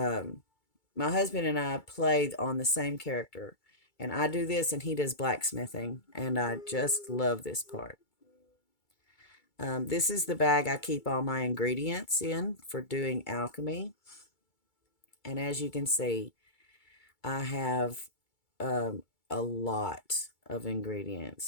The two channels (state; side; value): late; right; 2.3 ms